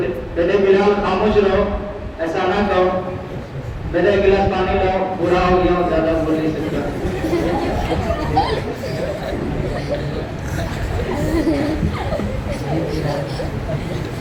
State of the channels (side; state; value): both; identical; correlation 1.00